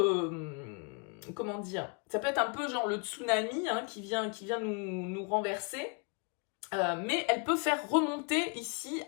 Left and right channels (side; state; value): right; quieter; 34.6 dB